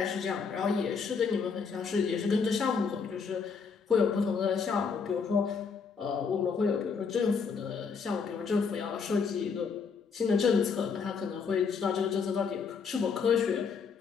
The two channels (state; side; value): quieter; right; 5.6 dB